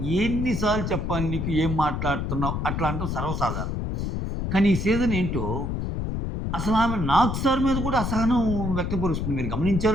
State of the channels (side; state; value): left; noise; rumble, 2 dB below the sound